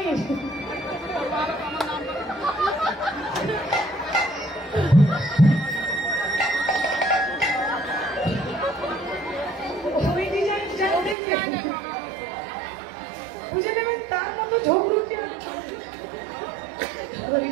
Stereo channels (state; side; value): drops out; left; at 11.2 s